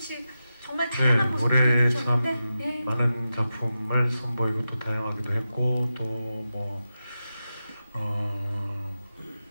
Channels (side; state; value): both; inverted; correlation -0.91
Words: 정말 다양한 모습을 올해 보여주셨는데 참 많은 작품을 선보이고 또 다양하기도 했고, 또